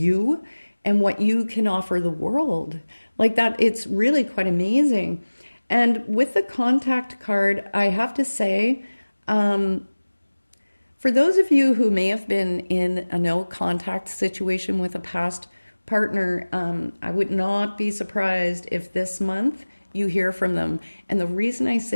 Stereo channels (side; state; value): both; inverted; correlation -1.00